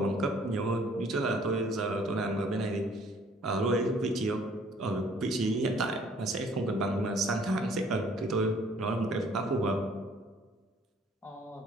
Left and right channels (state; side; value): normal; both; correlation 0.58